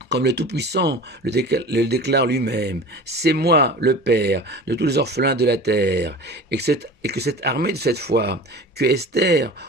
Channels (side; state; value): both; normal; correlation 0.37